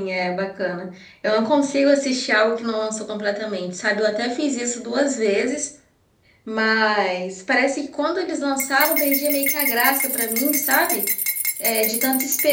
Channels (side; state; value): both; identical; correlation 1.00